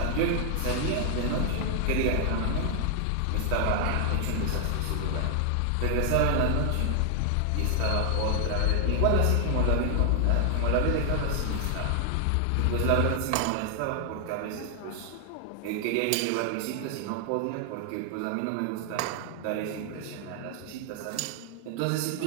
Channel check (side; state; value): both; different; correlation 0.00